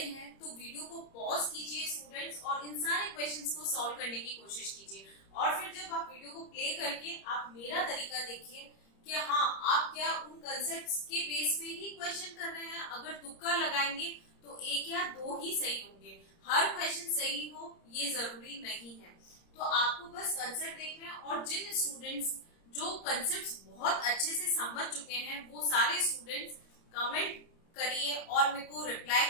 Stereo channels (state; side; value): late; right; 30 ms